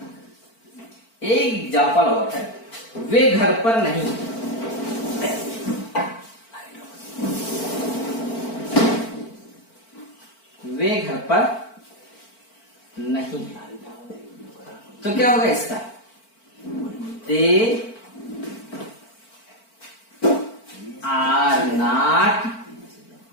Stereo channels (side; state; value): right; late; 4.5 ms